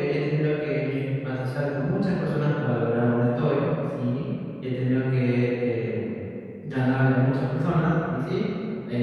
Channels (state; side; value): identical; both; correlation 1.00